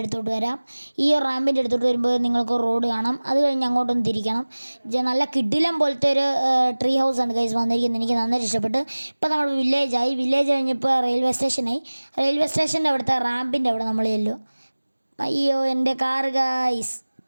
അടുത്തോട്ട് വരാം. ഈ റാമ്പിൻ്റെ അടുത്തോട്ട് വരുമ്പോൾ നിങ്ങൾക്ക് റോഡ് കാണാം. അത് കഴിഞ്ഞ് അങ്ങോട്ടൊന്ന് തിരിക്കണം. നല്ല കിടിലം പോലത്തെ ഒരു ട്രീ ഹൗസാണ് ഗൈസ് വന്നിരിക്കുന്നത്. എനിക്ക് നന്നായിട്ട് ഇഷ്ടപ്പെട്ടു. ഇപ്പോൾ നമ്മൾ വില്ലേജ് കഴിഞ്ഞപ്പോൾ റെയിൽവേ സ്റ്റേഷനായി. റെയിൽവേ സ്റ്റേഷൻ്റെ അവിടുത്തെ റാമ്പിൻ്റെ അവിടെ നമ്മൾ ചെല്ലും. അയ്യോ, എൻ്റെ കാർ ഗൈസ്.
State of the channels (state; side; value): inverted; both; correlation -1.00